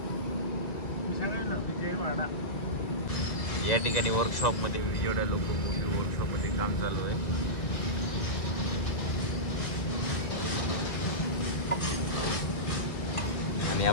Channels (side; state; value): right; late; 1.9 ms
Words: या ठिकाणी वर्कशॉपमध्ये विजयवाडा लोकोमोटिव्ह वर्कशॉपमध्ये काम चालू आहे. आणि